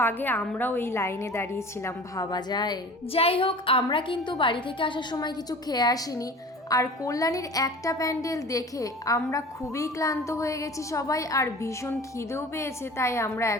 আগে আমরাও এই লাইনে দাঁড়িয়েছিলাম, ভাবা যায়। যাই হোক, আমরা কিন্তু বাড়ি থেকে আসার সময় কিছু খেয়ে আসিনি। আর কল্যাণীর একটা প্যান্ডেল দেখে আমরা খুবই ক্লান্ত হয়ে গেছি সবাই, আর ভীষণ খিদেও পেয়েছে, তাই আমরা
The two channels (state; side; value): normal; both; correlation 0.40